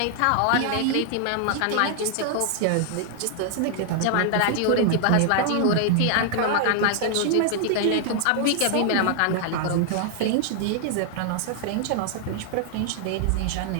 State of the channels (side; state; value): both; different; correlation 0.00